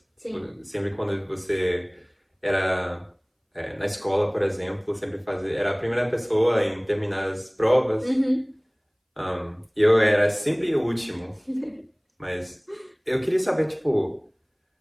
Sim. Sempre quando você era na escola, por exemplo, era a primeira pessoa em terminar as provas. Eu era sempre o último. Mas eu queria saber, tipo,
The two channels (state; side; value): identical; both; correlation 1.00